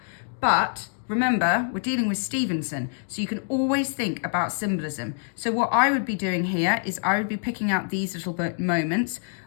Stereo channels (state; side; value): silent; right; digital silence